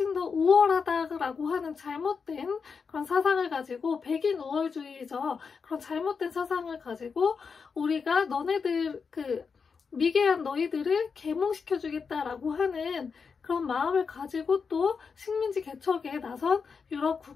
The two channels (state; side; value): quieter; right; 5.5 dB